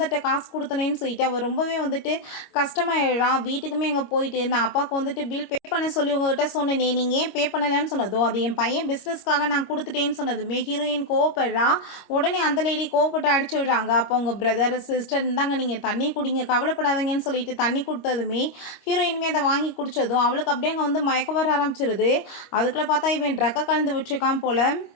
காசு கொடுத்தனேன்னு சொல்லிட்டு அவள் ரொம்பவே வந்துட்டு கஷ்டமாயிடுறான். வீட்டுக்குமே அங்கே போயிட்டு நான் அப்பாவுக்கு வந்துட்டு பில் பே பண்ண சொல்லி உங்ககிட்ட சொன்னேனே, நீங்கள் ஏன் பே பண்ணலைன்னு சொன்னதும் அது என் பையன் பிஸ்னஸ்க்காக நான் கொடுத்துட்டேன்னு சொன்னதுமே ஹீரோயின் கோவப்படுறா. உடனே அந்த லேடி கோவப்பட்டு அடிச்சு விடுறாங்க. அப்போ உங்கள் பிரதர் சிஸ்டர் இருந்தாங்க, நீங்கள் தண்ணி குடிங்க கவலைப்படாதீங்கன்னு சொல்லிட்டு தண்ணி கொடுத்ததுமே ஹீரோயினுமே அதை வாங்கி குடித்ததும் அவளுக்கு அப்படியே அங்கே வந்து மயக்க வர ஆரம்பிச்சிருது. அதுக்குள்ளே பார்த்தா இவன் ட்ரக்கை கலந்து விட்டுருக்கான் போல்.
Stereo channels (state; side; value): late; right; 25 ms